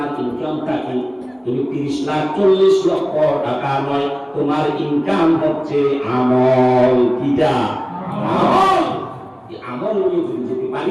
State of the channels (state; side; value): identical; both; correlation 1.00